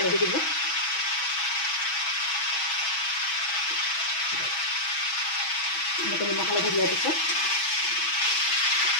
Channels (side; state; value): right; late; 6.2 ms